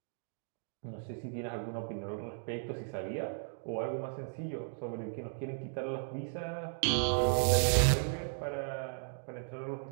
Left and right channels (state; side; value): silent; left; digital silence